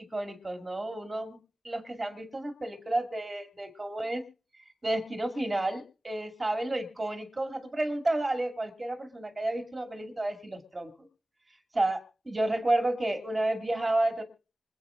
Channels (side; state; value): both; normal; correlation 0.97